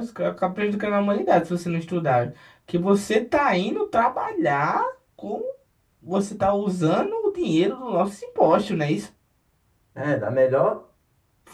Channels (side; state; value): both; identical; correlation 1.00